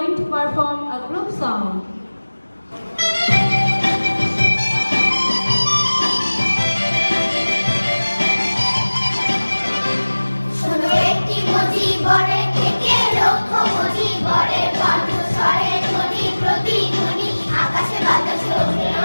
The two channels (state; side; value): inverted; both; correlation -1.00